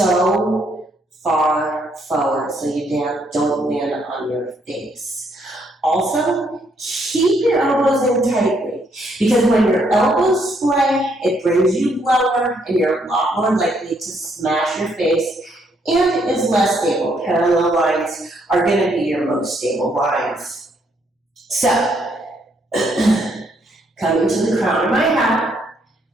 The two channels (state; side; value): normal; both; correlation 0.71